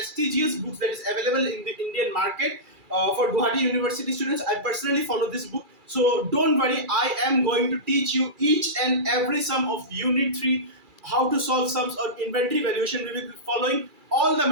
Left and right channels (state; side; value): late; left; 2.3 ms